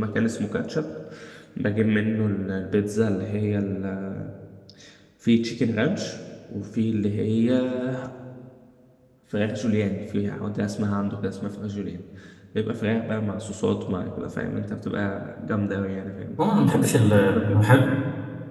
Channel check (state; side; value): identical; both; correlation 1.00